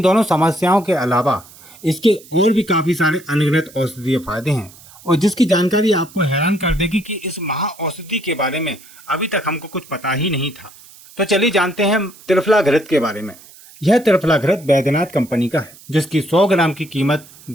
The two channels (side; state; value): right; noise; hiss, 22 dB below the sound